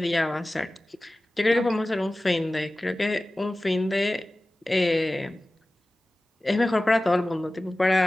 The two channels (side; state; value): both; normal; correlation 0.97